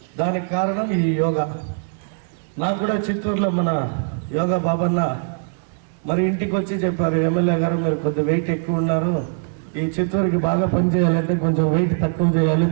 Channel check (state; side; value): silent; left; digital silence